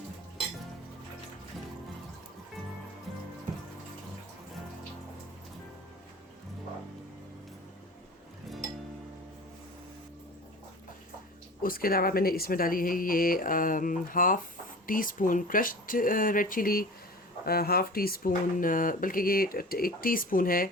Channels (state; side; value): normal; both; correlation 0.37